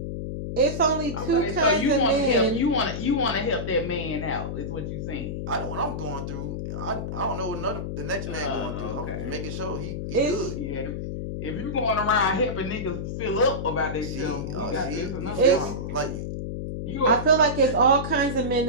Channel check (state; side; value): noise; left; hum, 4 dB below the sound